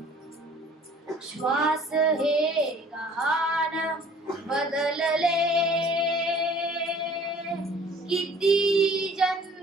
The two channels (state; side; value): normal; both; correlation 0.52